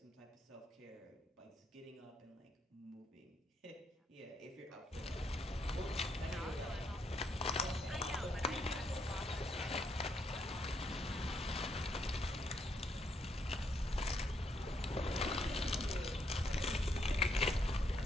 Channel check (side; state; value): both; normal; correlation 0.75